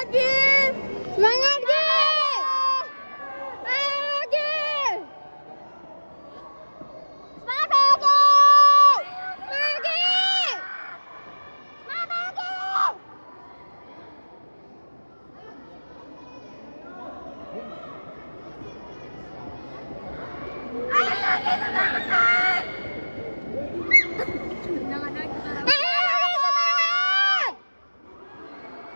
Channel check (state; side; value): inverted; both; correlation -1.00